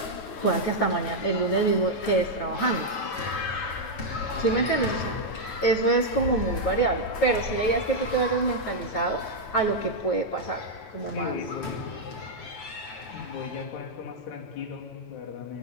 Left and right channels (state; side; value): late; right; 9.2 ms